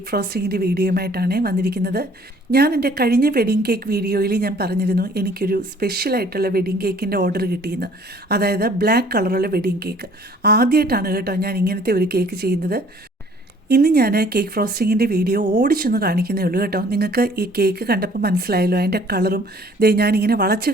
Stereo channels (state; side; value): normal; both; correlation 0.56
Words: ഫ്രോസ്റ്റിങ്ങിൻ്റെ വീഡിയോയുമായിട്ടാണ് വന്നിരിക്കുന്നത്. ഞാൻ എൻ്റെ കഴിഞ്ഞ വെഡിങ് കേക്ക് വീഡിയോയിൽ ഞാൻ പറഞ്ഞിരുന്നു എനിക്കൊരു സ്പെഷ്യലായിട്ടുള്ള വെഡിങ് കേക്കിൻ്റെ ഓർഡർ കിട്ടിയെന്ന്. അതായത് ബ്ലാക്ക് കളറുള്ള വെഡിങ് കേക്ക്. ആദ്യമായിട്ടാണ് കേട്ടോ ഞാൻ ഇങ്ങനത്തെ ഒരു കേക്ക് ചെയ്യുന്നത്. ഇന്ന് ഞാൻ കേക്ക് ഫ്രോസ്റ്റിങ്ങിൻ്റെ വീഡിയോ ഓടിച്ചൊന്ന് കാണിക്കുന്നേ ഉള്ളൂ കേട്ടോ. നിങ്ങൾക്ക് ഈ കേക്ക് കണ്ടപ്പോൾ മനസ്സിലായല്ലോ അതിൻ്റെ കളറും ഞാനിങ്ങനെ വളച്ച്